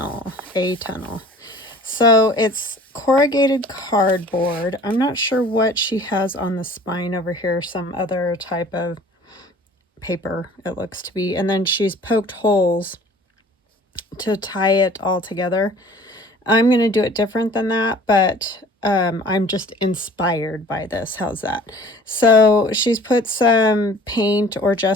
A. Tunnell. So it's corrugated cardboard. I'm not sure what she has on the spine over here, some other type of paper it looks to be. And then she's poked holes to tie it all together. I'm going to do it different than that, but I'm just inspired by this. How's that? So she's put some paint or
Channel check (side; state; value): both; normal; correlation 0.48